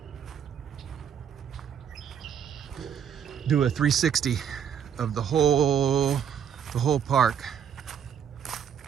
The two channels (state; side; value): quieter; left; 8.4 dB